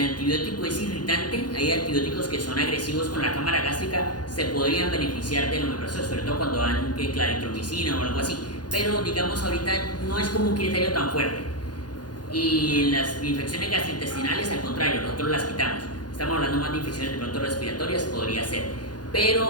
antibiótico es irritante, hay antibióticos que son agresivos con la cámara gástrica, se podrían beneficiar del omeprazol, sobre todo cuando dan claritromicina o algo así. Pero, digamos, ahorita no es como un criterio tan fuerte. Y en las infecciones gastrointestinales, al contrario, nosotros las quitamos. Estamos hablando más de infecciones de pronto respiratorias, podría ser.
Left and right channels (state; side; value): late; right; 0.69 ms